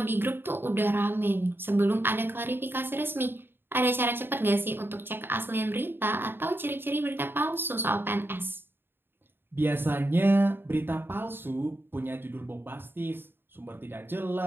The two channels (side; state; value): left; late; 0.10 ms